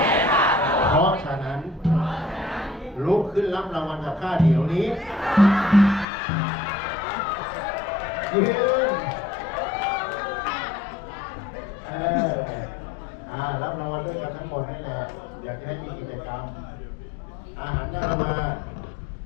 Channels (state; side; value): drops out; right; at 6.1 s